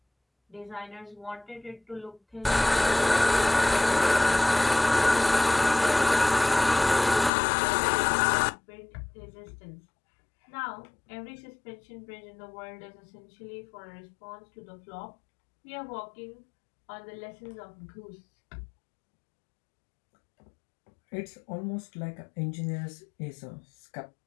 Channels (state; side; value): drops out; right; at 7.3 s